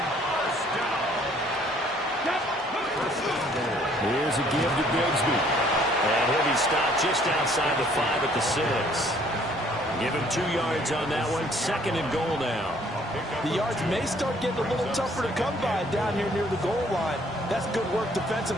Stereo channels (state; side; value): normal; both; correlation 0.60